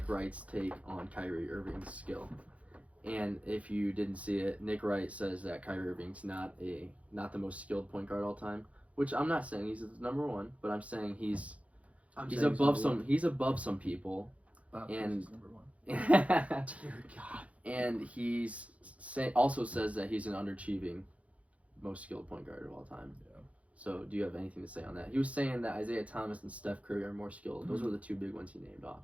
Wright's take on Kyrie Irving's skill. And if you didn't see it, Nick Wright says that Kyrie Irving's not the most skilled point guard all time, which I'm not saying he's number one, but I'm saying he's He's above some people. Bob And- Cousy is number one. Dear God. And he's also says that he's an underachieving most skilled point guard of all time. Yeah. So do you have anything to say on that? He was saying that Isaiah Thomas and Steph Curry are more skilled. Those were the two big ones he named off.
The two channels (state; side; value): late; left; 0.065 ms